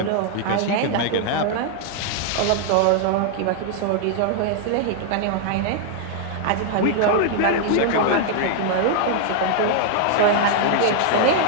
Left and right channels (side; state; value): both; different; correlation -0.01